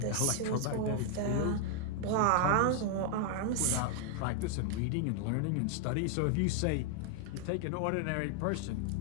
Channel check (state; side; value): different; both; correlation 0.00